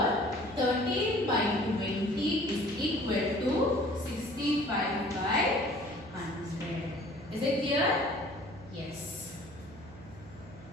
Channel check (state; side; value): noise; right; hum, 18 dB below the sound